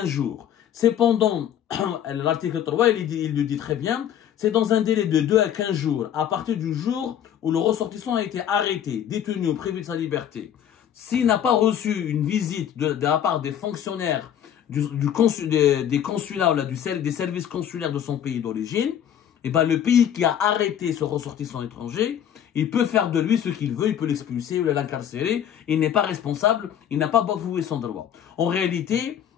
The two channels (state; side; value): quieter; right; 9.7 dB